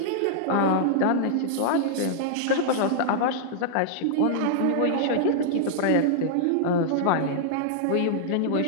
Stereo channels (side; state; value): both; different; correlation -0.01